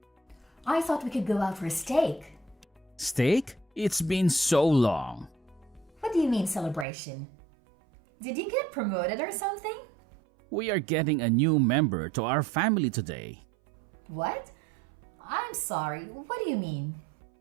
I thought we could go out for a steak. Steak? It's been so long. What do you mean celebration? Did you get promoted or something? We are getting a new member to our family today. What? I'm sorry, what do you mean?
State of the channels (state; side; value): drops out; left; at 6.9 s